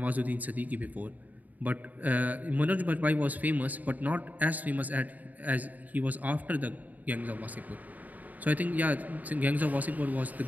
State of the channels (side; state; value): left; late; 0.079 ms